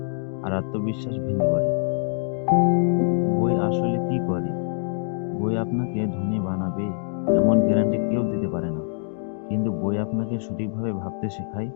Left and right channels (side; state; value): right; silent; 60 dB below the other